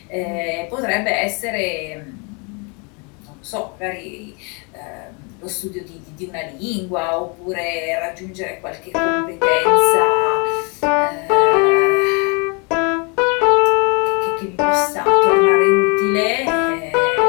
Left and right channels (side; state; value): right; quieter; 33.0 dB